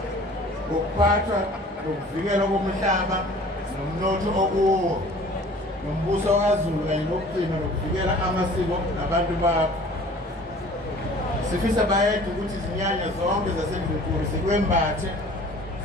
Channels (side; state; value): both; normal; correlation 0.48